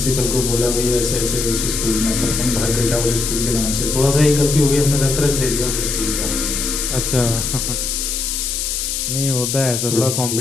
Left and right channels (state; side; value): noise; left; hiss, 2 dB below the sound